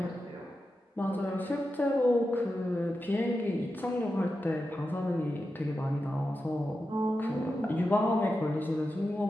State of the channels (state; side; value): normal; both; correlation 0.90